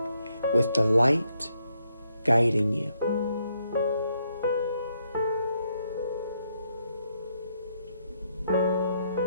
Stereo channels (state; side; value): inverted; both; correlation -0.77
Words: with the light guiding you.